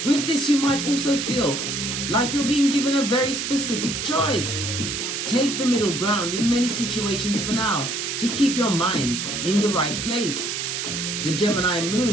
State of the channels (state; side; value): noise; right; hiss, 3 dB below the sound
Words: With this, you might also feel like you're being given a very specific choice. Take the middle ground in many situations for now to keep your mind in the right place. The Gemini